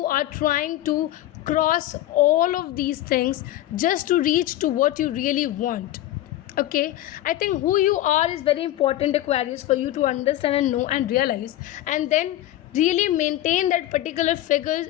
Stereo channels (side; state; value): right; quieter; 14.3 dB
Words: are trying to cross all of these things just to reach to what you really want. Okay, I think who you are is very important, Aquarius, for you to understand and know and realize, and then really maintain that particular figures